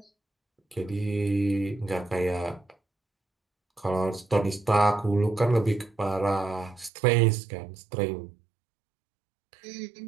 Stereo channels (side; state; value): left; drops out; at 6.9 s